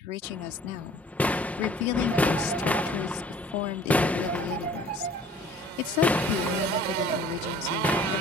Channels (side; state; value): both; normal; correlation 0.51